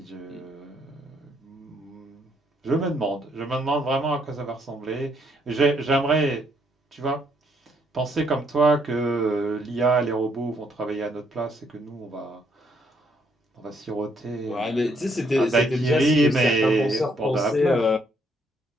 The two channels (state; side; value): normal; both; correlation 0.71